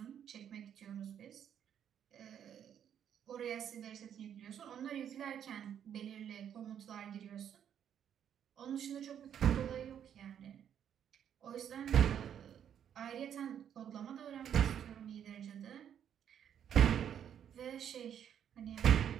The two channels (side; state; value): left; quieter; 9.1 dB